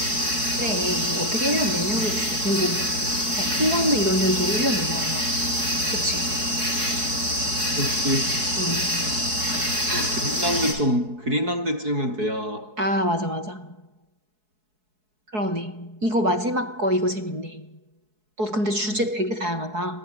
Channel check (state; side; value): late; left; 4.7 ms